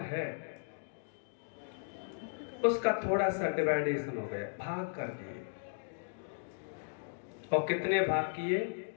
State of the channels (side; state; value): right; silent; digital silence